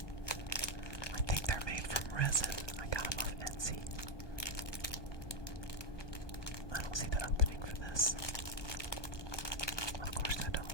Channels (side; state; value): right; late; 1.2 ms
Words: I think they're made from resin. I got them off Etsy. I don't see the opening for this. Of course I